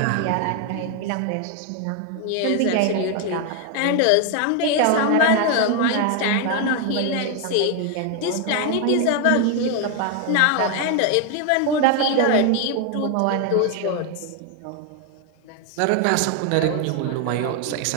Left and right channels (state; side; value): different; both; correlation 0.01